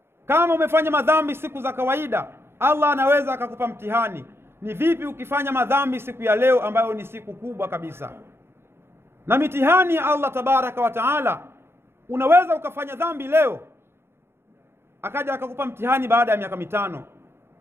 Kama umefanya madhambi siku za kawaida, Allah anaweza akakupa mtihani. Ni vipi ukifanya madhambi siku ya leo ambayo ni siku kubwa kabisa? Na mitihani ya Allah tabaraka wa taala, unaweza ukafanya dhambi leo akaja akakupa mtihani baada ya miaka 5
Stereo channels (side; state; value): left; late; 0.11 ms